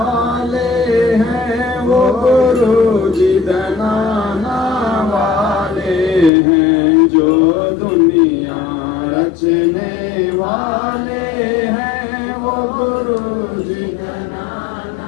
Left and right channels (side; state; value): right; drops out; at 6.3 s